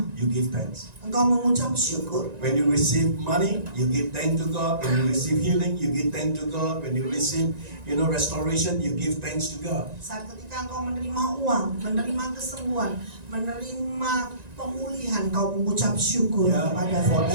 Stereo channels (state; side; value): late; left; 1.9 ms